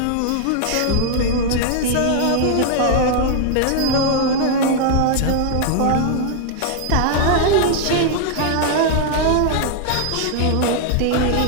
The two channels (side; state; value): both; different; correlation 0.00